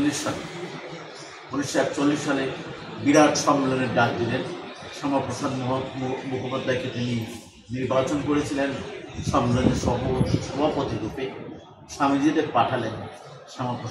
সালে বিরাট সম্মেলনের ডাক দিলেন। শ্যামাপ্রসাদ মুখোপাধ্যায়কে তিনি নির্বাচন করেছিলেন সম্মেলনের সভাপতি রূপে। স্বামীজিদের পাঠালেন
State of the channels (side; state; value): both; identical; correlation 1.00